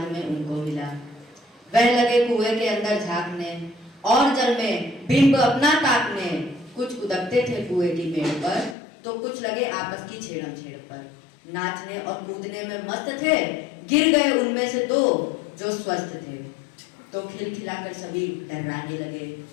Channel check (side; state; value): right; drops out; at 8.8 s